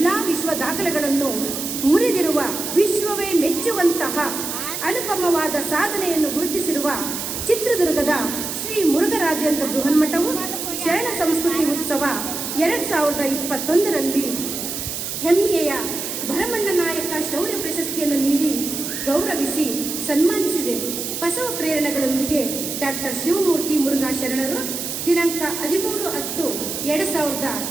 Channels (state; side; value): noise; right; hiss, 5 dB below the sound